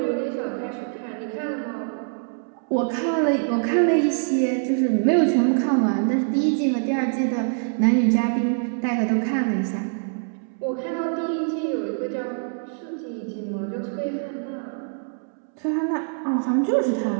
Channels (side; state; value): left; silent; 62 dB below the other